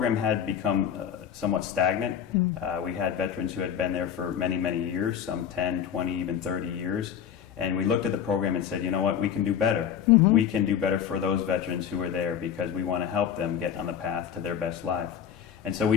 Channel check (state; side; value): quieter; right; 8.6 dB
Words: had become somewhat stagnant. We had veterans who had been there for many, many years, some 10, 20, even 30 years. And we looked at the program and said, you know what, we can do better. We can do better for those veterans who are there because we want to help them get on the path to their best life. And so we